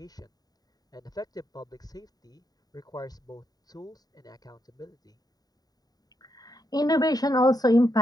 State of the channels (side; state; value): right; late; 0.18 ms